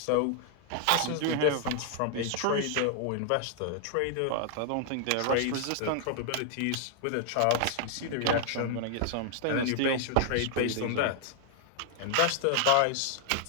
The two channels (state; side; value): different; both; correlation 0.00